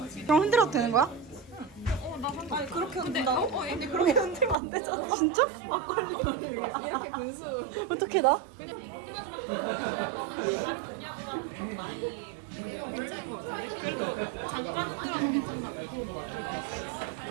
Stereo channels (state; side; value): drops out; left; at 4.5 s